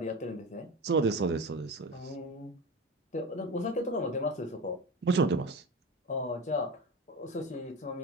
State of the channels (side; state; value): both; normal; correlation 0.27